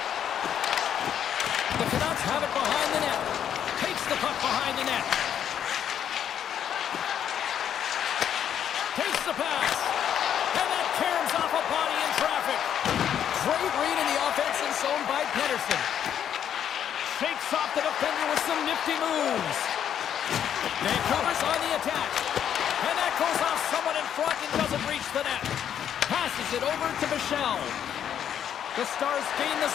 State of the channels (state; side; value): quieter; right; 9.3 dB